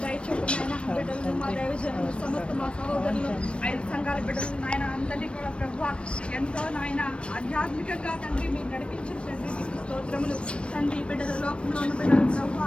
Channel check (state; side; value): late; right; 0.059 ms